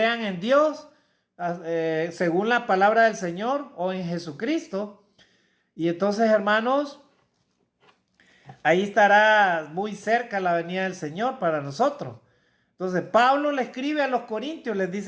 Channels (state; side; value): identical; both; correlation 1.00